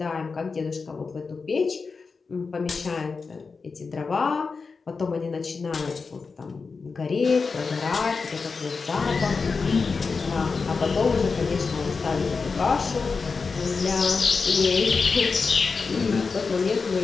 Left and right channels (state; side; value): quieter; right; 4.7 dB